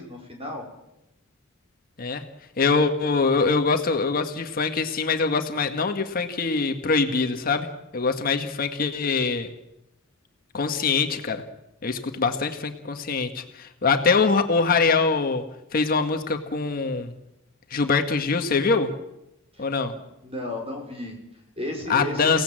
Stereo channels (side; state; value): right; quieter; 4.1 dB